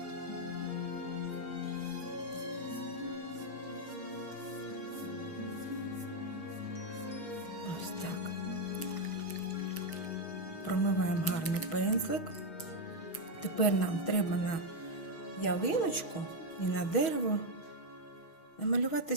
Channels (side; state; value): right; late; 6.4 ms